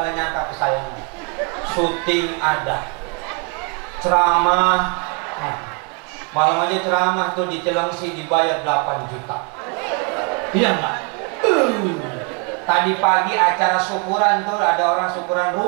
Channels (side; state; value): left; quieter; 32.5 dB